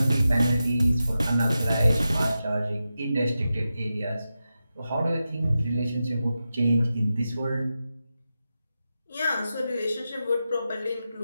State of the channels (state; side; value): inverted; both; correlation -0.91